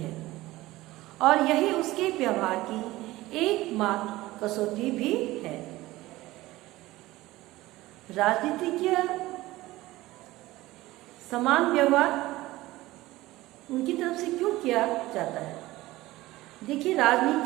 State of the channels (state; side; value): quieter; left; 18.0 dB